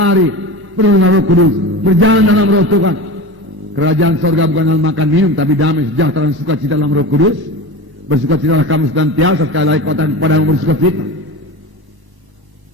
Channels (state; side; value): late; left; 1.0 ms